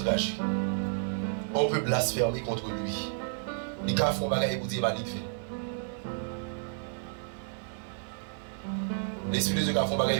On peut blasphémer contre lui. Il a fait un bagage pour dire qu'il va faire. L'esprit de Dieu a fait un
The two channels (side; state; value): left; silent; 57 dB below the other